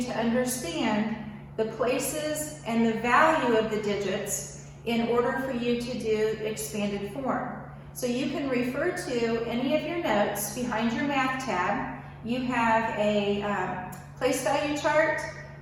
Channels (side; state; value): both; identical; correlation 1.00